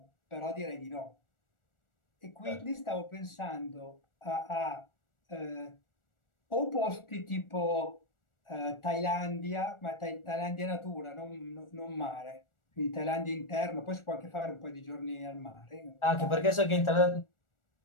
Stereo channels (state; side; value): late; right; 1.4 ms